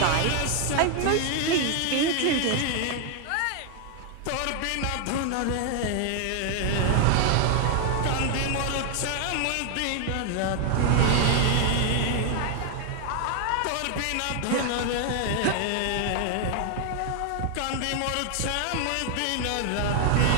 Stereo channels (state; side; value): different; both; correlation 0.00